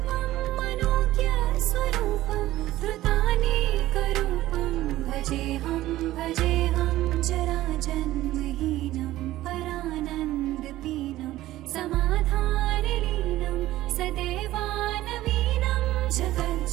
मनोज्ञस्वरूपं धृतानेकरूपं भजेऽहं भजेऽहं जराजन्महीनं परानन्दपीनं समाधानलीनं सदैवानवीनं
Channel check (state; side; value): quieter; left; 15.5 dB